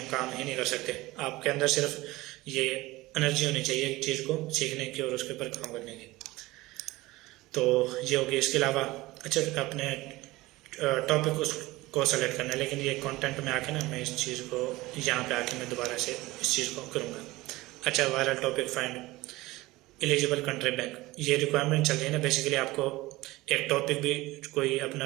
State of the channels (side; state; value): left; quieter; 19.6 dB